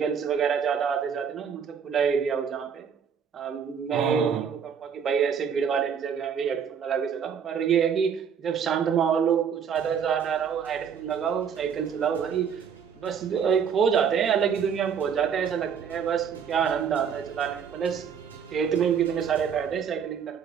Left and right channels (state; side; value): quieter; left; 7.3 dB